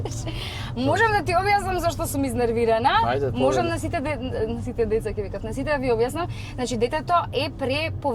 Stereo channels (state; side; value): identical; both; correlation 1.00